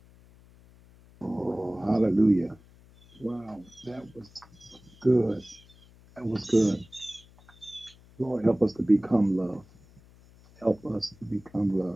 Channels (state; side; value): noise; left; hum, 26 dB below the sound